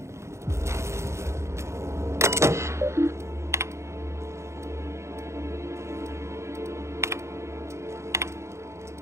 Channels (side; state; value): left; late; 0.14 ms